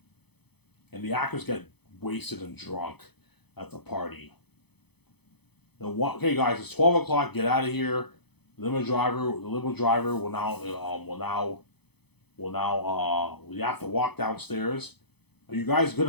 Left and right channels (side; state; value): right; late; 0.98 ms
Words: And the actors get wasted and drunk at the party. Okay, guys, it's 12 o'clock. Get out of here. The limo driver we have to walk downstairs. Are you guys good